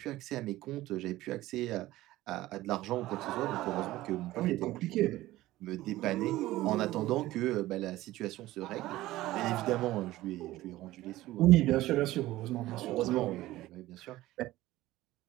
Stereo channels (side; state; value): left; quieter; 16.5 dB